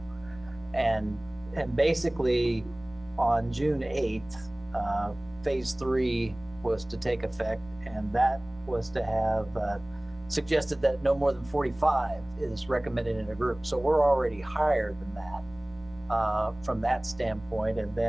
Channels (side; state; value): left; noise; rumble, 21 dB below the sound